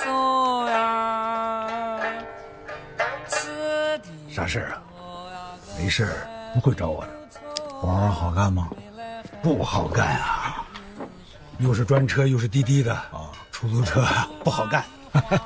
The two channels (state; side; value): identical; both; correlation 1.00